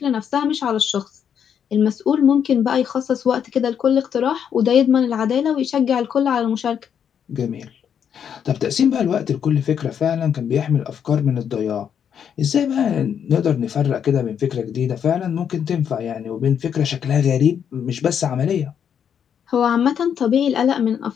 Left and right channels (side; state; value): right; quieter; 8.2 dB